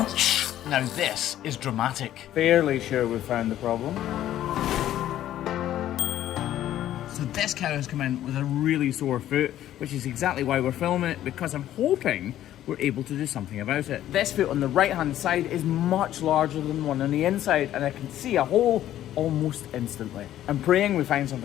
Now this is dramatic. Fairly sure we found the problem. So this cow has come in with a really sore foot, which is exactly why we're filming it, because I'm hoping we're able to do something about it. This foot on the right hand side is much larger than the one on the inside, and I can see a hole almost instantly. I'm praying we find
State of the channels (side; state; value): right; quieter; 12.5 dB